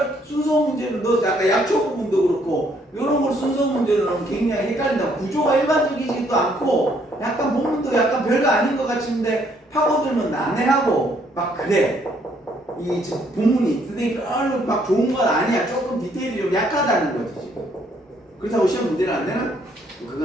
순서 문제로 넣어서 아까 약초 부분도 그렇고 이런 걸 순서 문제로 넣으면 굉장히 헷갈린다. 구조가 일반적이지도 않고 약간 본문도 약간 별거 아닌 것 같은데 파고들면 난해하고 막 그래. 이 본문이 선생님 별로 막 좋은 건 아니야. 조금 디테일이 좀 약하다는 거지 지금. 그렇다고 시험 문제는 안 되나?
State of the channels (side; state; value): both; normal; correlation 0.68